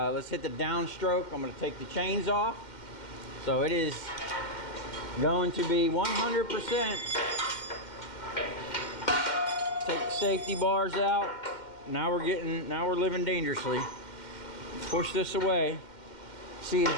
let's hit the downstroke. I'm gonna take the chains off. So it is going to be 100%. Take the safety bars out. Now we're living dangerously. Push this away. She's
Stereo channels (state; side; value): late; right; 2.1 ms